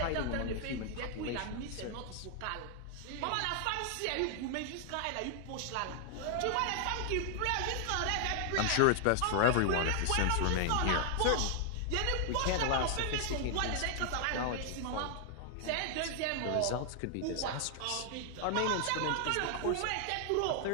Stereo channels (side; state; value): both; different; correlation 0.00